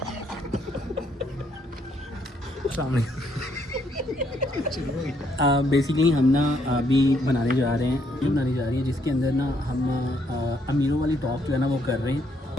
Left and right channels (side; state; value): both; normal; correlation 0.71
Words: बेसिकली हम ना अभी बनाने जा रही है जिसके अंदर ना हम अमीरों वाली टॉप जो है ना वो कर रहे हैं।